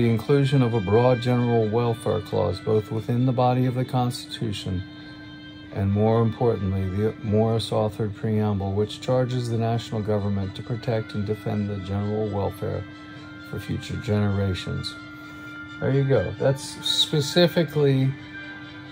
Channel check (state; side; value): identical; both; correlation 1.00